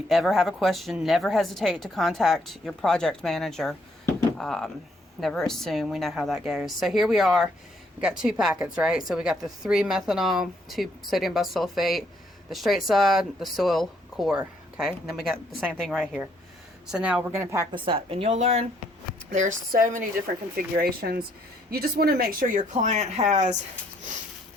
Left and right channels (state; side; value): normal; both; correlation 0.69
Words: ever have a question, never hesitate to contact your project manager. Never assume. We know how that goes. So here we are. We got 2 packets, right? So we got the 3 methanol, 2 sodium bisulfate, the straight side, the soil core. Okay, and then we got the same thing right here. So now we're going to pack this up, and you'll learn there's so many different configurations. You just want to make sure your client has,